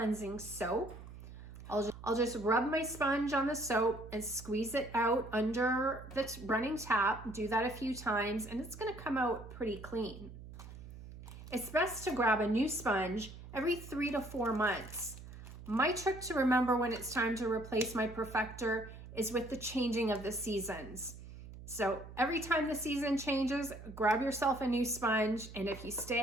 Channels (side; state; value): right; noise; hum, 14 dB below the sound